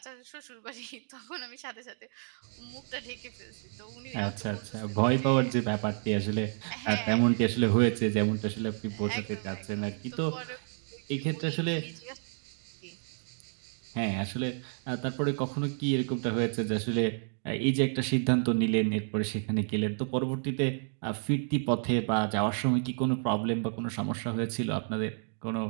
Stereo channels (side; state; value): left; silent; 57 dB below the other